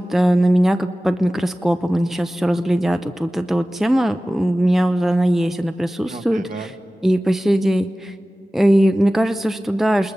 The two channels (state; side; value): normal; both; correlation 0.97